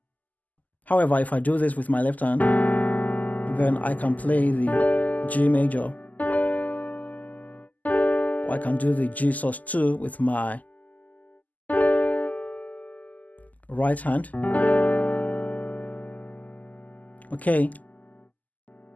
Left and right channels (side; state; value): right; late; 0.079 ms